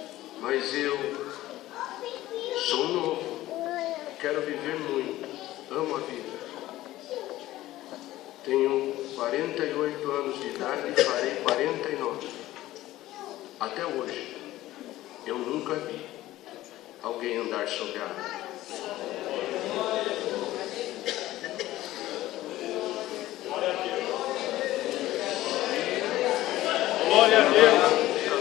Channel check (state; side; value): quieter; right; 15.7 dB